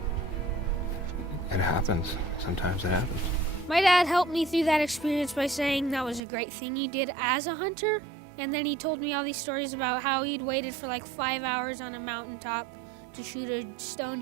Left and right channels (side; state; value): left; drops out; at 6.2 s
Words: it happens. Sometimes it happens. My dad helped me through that experience by saying that was a great thing he did as a hunter. And then he told me all these stories about how he'd waited for like 5 hours on a mountaintop to shoot a stone